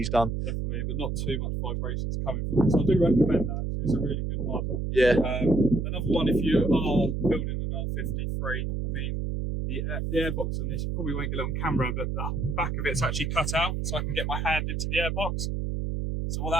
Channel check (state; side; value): noise; right; hum, 1 dB below the sound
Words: done. Definitely, but not too much vibrations coming from it. So I do recommend that. It's a really good mod. Yeah. Another one, if you are building an r53, I mean, the airbox on this, you probably won't get it on camera, but the back of it's actually cut out, so I can get my hand into the airbox. So what